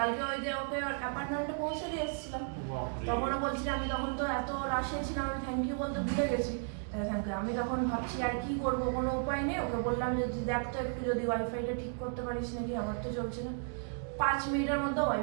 ওই যে ওকে অ্যাপার্টমেন্টে পৌঁছে দিয়ে এসেছিলাম, তখনও বলছি আমি তখন তো এত রাশে ছিলাম, আমি থ্যাংক ইউ বলতে ভুলে গেছি। আমি তখন ভাবছি আর কি করবো, কোনো উপায় নেই। ওকে বললাম যে দেখ তো একটু যদি ওয়াইফাইটা ঠিক করতে পারিস নাকি, আমার তো চলছে না। 5 মিনিটের মধ্যে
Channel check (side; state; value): left; silent; 55 dB below the other